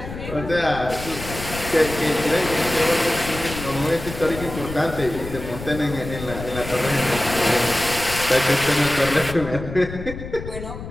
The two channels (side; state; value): left; noise; rumble, 10 dB below the sound